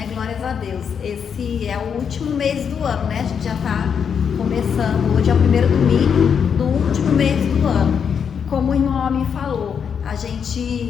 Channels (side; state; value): right; quieter; 7.1 dB